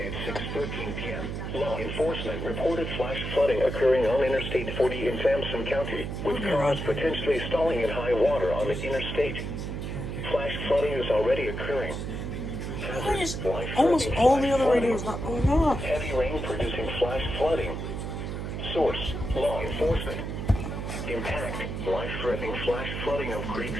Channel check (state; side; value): noise; right; hum, 5 dB below the sound